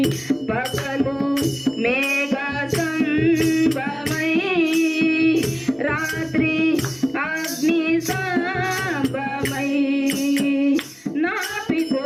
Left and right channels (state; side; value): identical; both; correlation 1.00